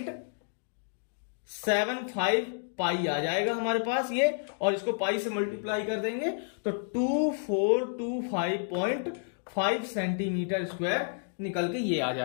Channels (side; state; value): right; silent; digital silence